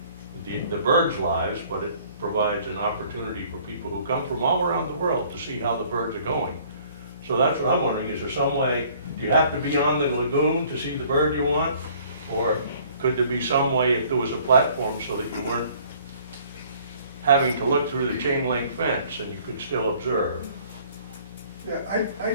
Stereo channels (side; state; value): both; inverted; correlation -0.56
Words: the birds' lives, but it provides an opportunity for people who come from all around the world to see how the birds are going. So that's what I'm wondering, is there some way, do you have to be on the lagoon to see the bird you want? Or could there be some way, if there was a platform, so that you weren't having to look through the chain link fence and you could still observe? Yeah, I